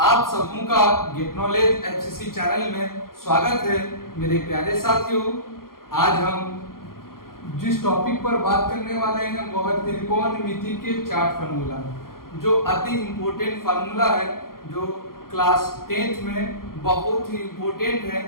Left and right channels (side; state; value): right; late; 0.92 ms